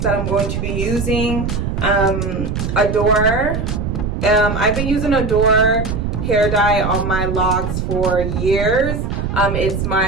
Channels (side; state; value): right; noise; rumble, 2 dB below the sound